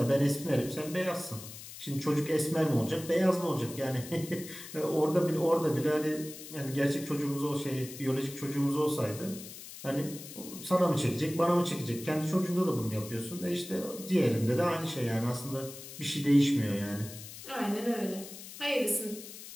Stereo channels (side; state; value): left; noise; hiss, 13 dB below the sound